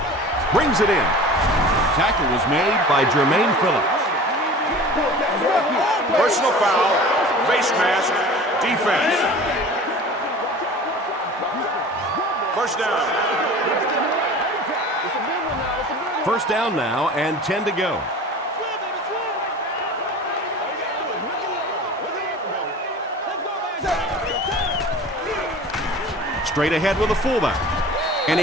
Brings it in. Tackle was made by Jermaine Phillips. Personal foul, face mask, defense. First down. First down now and 10 to go. Straight ahead with a fullback. And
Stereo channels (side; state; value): both; normal; correlation 0.40